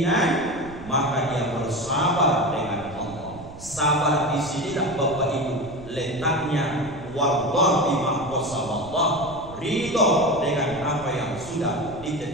maka dia bersabar dengan Allah. Sabar di sinilah Bapak Ibu letaknya. Wallah bima qasamallah, ridho dengan apa yang sudah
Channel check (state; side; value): noise; right; rumble, 16 dB below the sound